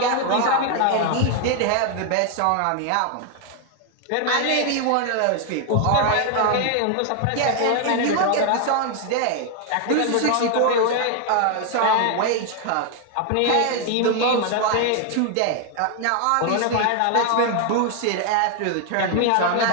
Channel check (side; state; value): both; different; correlation 0.00